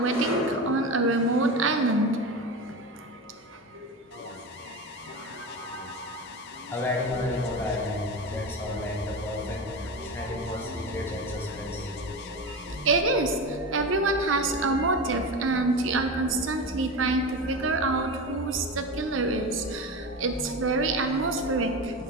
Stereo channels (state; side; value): normal; both; correlation 0.24